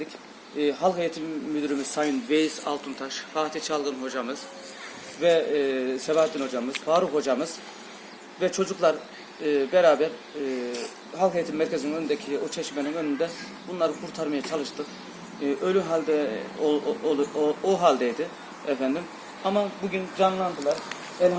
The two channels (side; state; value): both; identical; correlation 1.00